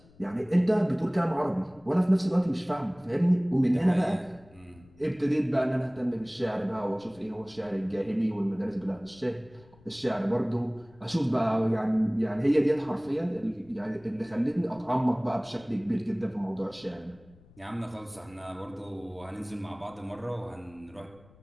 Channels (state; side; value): noise; left; rumble, 26 dB below the sound